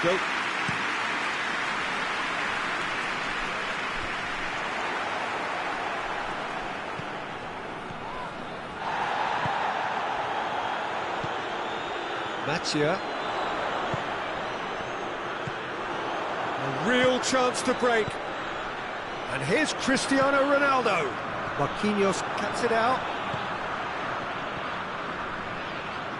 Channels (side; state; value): both; identical; correlation 1.00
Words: though. Mathieu. A real chance to break. And here's Cristiano Ronaldo. Marquinhos cuts it out.